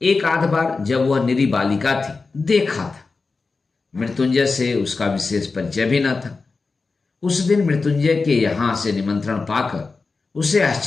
एक आध बार जब वह निरी बालिका थी देखा था। मृत्युंजय से उसका विशेष परिचय भी न था। उस दिन मृत्युंजय के यहाँ से निमंत्रण पाकर उसे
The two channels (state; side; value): quieter; right; 4.2 dB